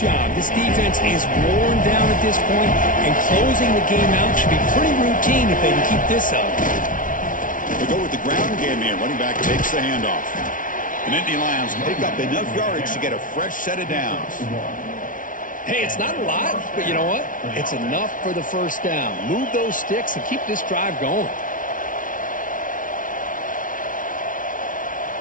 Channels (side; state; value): right; late; 0.38 ms